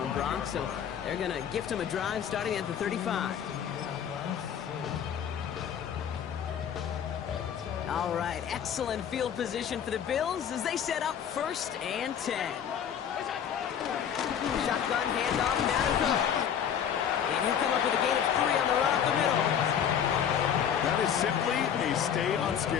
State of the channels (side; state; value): right; quieter; 8.6 dB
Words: Brock. So they're going to gift him a drive starting at the 35. All right, excellent field position for the Bills as they set up 1st and 10. Shotgun handoff now to Cook. And he'll come up with a gain of 3 on the run up the middle. That is simply a